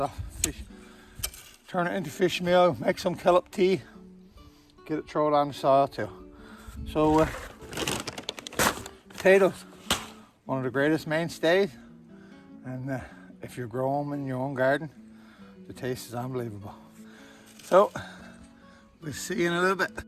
turn it into fish meal, make some kelp tea, get it thrown on the soil too. So potatoes, one of the greatest mainstays, and if you grow them in your own garden, the taste is unbelievable. So we'll see you in a little bit.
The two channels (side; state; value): both; identical; correlation 1.00